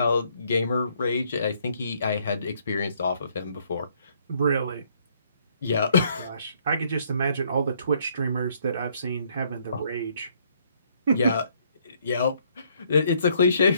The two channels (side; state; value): both; inverted; correlation -0.67